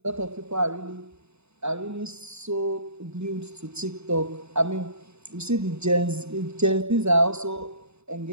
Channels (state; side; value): late; left; 0.81 ms